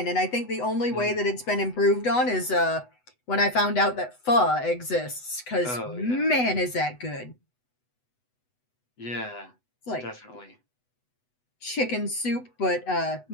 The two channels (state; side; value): late; right; 8.0 ms